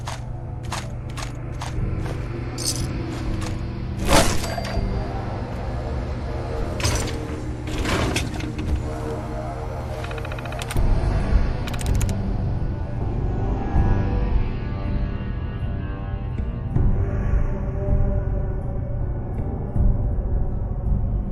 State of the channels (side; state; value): both; identical; correlation 1.00